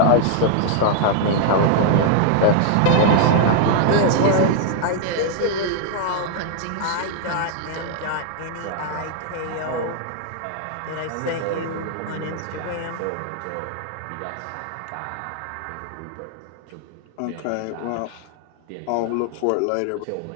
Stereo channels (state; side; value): different; both; correlation 0.00